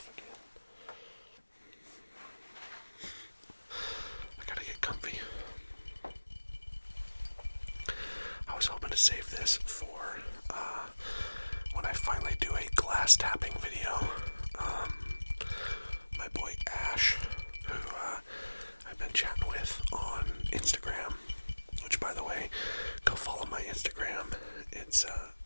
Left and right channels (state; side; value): inverted; both; correlation -1.00